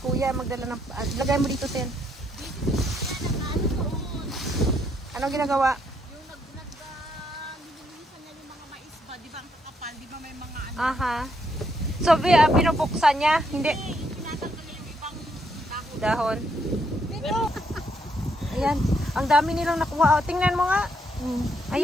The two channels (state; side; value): normal; both; correlation 0.74